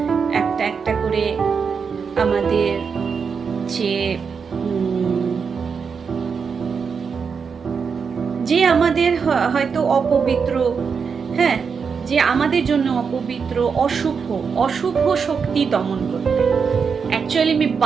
একটা একটা করে আমাদের যে আমাদের হয়তো অপবিত্র, হ্যাঁ, যে আমাদের জন্য অপবিত্র, অশুভ শক্তি দমন করতে। অ্যাকচুয়ালি আমি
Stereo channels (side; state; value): left; quieter; 5.9 dB